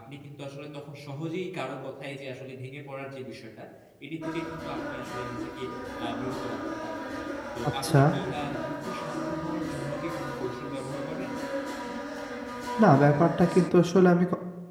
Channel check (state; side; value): identical; both; correlation 1.00